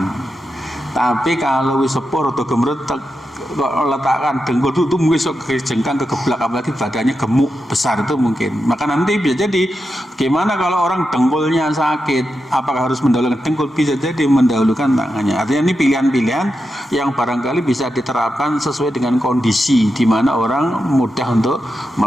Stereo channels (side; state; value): both; normal; correlation 0.88